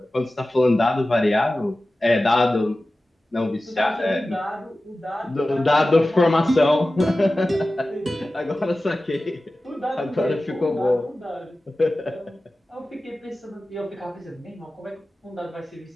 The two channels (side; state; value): both; normal; correlation 0.95